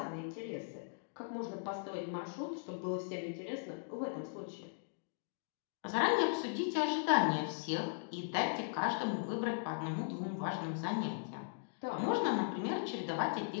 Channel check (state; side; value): silent; right; digital silence